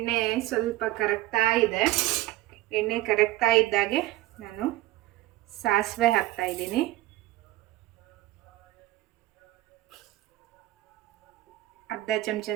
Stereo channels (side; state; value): left; quieter; 16.6 dB